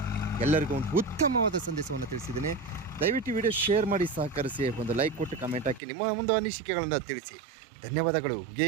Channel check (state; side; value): drops out; left; at 5.8 s